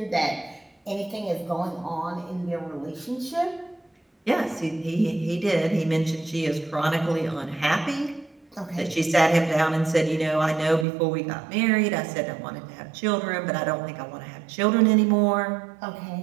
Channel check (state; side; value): drops out; left; at 10.9 s